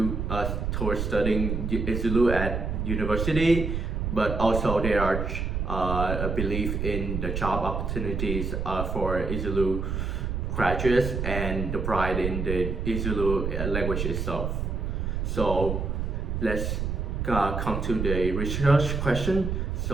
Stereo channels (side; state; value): right; noise; rumble, 2 dB below the sound